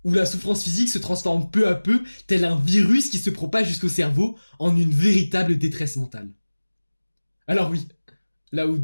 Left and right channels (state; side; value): inverted; both; correlation -1.00